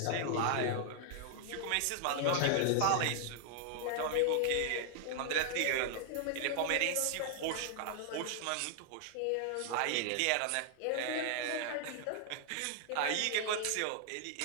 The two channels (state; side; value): different; both; correlation 0.00